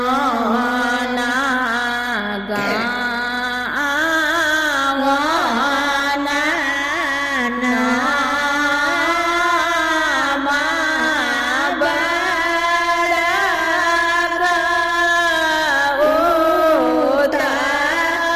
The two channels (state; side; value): noise; left; hum, 25 dB below the sound